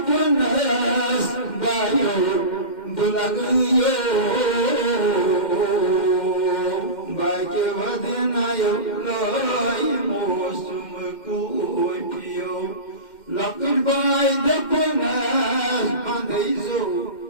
बायो बुलगयो बाके वदनायो लोय मौसम कुपियो लपट बाय दपनस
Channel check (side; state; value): right; late; 2.1 ms